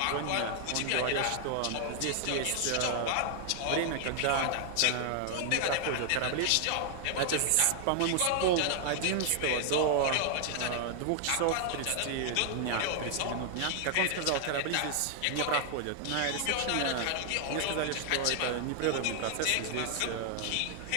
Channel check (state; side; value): different; both; correlation 0.00